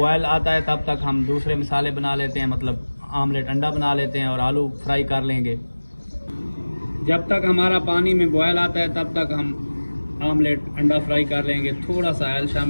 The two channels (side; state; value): both; inverted; correlation -1.00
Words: आता है तब तक हम दूसरे मसाले बना लेते हैं, मतलब आमलेट अंडा बना लेते हैं और आलू फ्राई कर लेंगे। जब तक हमारा पानी में बॉयल आता है तब तक हम आमलेट अंडा फ्राई कर लेंगे। थोड़ा सा ऑयल